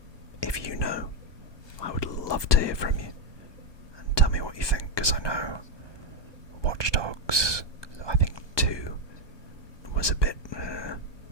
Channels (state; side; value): late; right; 1.2 ms